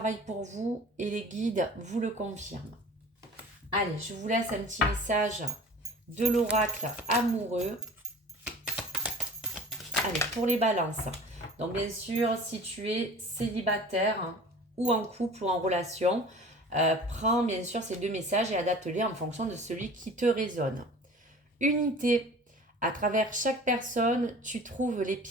pour vous et les guides vous le confirment. Allez, je vous laisse un petit message de l'oracle amoureux. Allez, pour les balances. Donc, bien sûr, si tu es célibataire ou en couple ou en relation, prends bien sûr ces deux messages et adapte-les en fonction de celui qui te résonne. Unité. À travers chaque personne, tu trouves les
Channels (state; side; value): normal; both; correlation 0.43